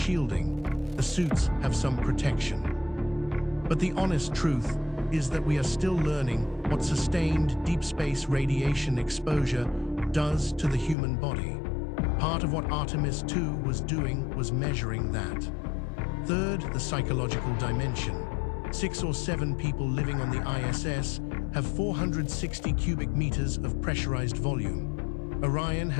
the suits have some protection. But the honest truth is that we are still learning what sustained deep space radiation exposure does to the human body. Part of what Artemis II was doing was measuring that. Third, the psychological dimension. 6 or 7 people living on the ISS have 460 cubic meters of pressurized volume. Orion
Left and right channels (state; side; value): drops out; right; at 11.0 s